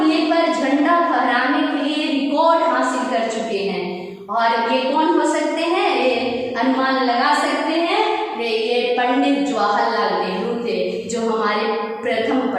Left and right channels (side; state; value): both; identical; correlation 1.00